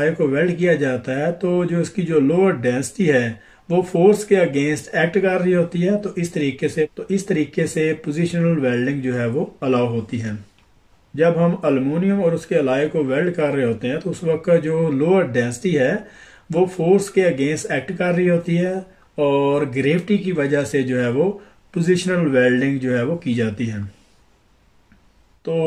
को weld किया जाता है तो जो इसकी जो लोअर डेंसिटी है वो फोर्स के अगेंस्ट एक्ट कर रही होती है, तो इस तरीके से पोजिशनल वेल्डिंग जो है वो अलाउ होती है। जब हम अल्युमिनियम और उसके अलाय को वेल्ड कर रहे होते हैं तो उस वक्त का जो लोअर डेंसिटी है वो फोर्स के अगेंस्ट एक्ट कर रही होती है और ग्रेविटी की वजह से जो है वो पोजिशनल वेल्डिंग जो है वो की जाती है।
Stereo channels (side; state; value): both; identical; correlation 1.00